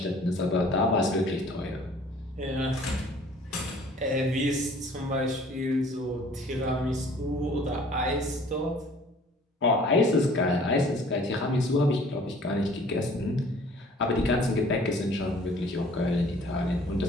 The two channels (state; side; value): normal; both; correlation 0.53